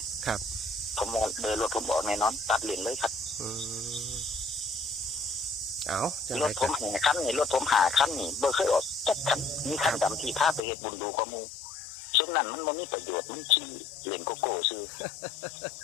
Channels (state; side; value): drops out; right; at 10.6 s